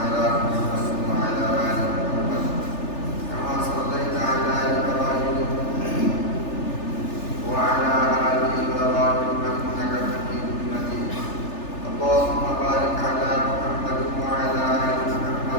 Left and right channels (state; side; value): late; right; 3.4 ms